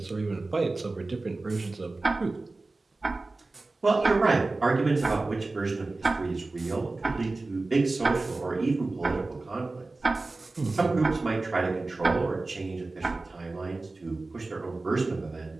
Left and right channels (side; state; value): left; quieter; 3.3 dB